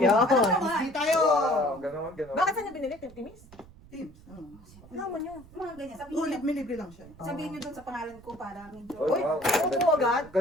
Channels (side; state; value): right; noise; rumble, 22 dB below the sound